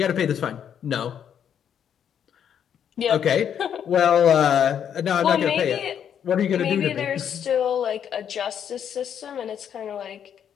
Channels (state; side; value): quieter; right; 8.7 dB